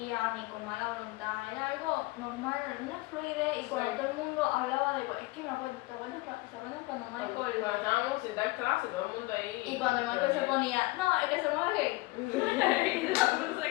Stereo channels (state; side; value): quieter; right; 22.0 dB